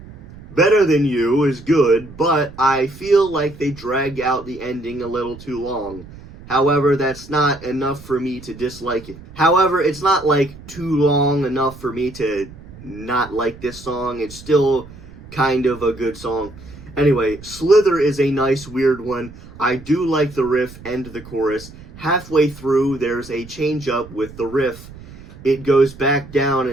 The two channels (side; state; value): right; noise; rumble, 18 dB below the sound